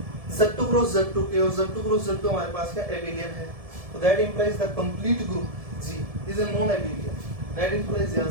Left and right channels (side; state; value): left; late; 1.7 ms